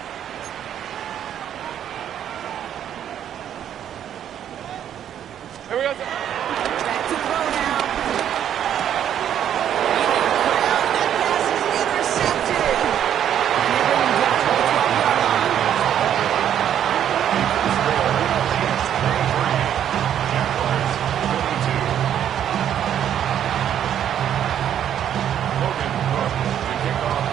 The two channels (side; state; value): left; quieter; 9.9 dB